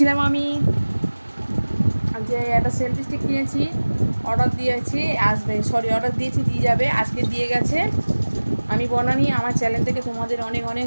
আমি যে একটা সেলফি স্টিক কিনেছি, অর্ডার দিয়েছি, আসবে, সরি অর্ডার দিয়েছি, দিয়ে যাবে, আজকে দিয়ে গেছে। আমি বনানি, আমার চ্যানেল থেকে তোমাদের অনেক অনেক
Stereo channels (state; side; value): inverted; both; correlation -1.00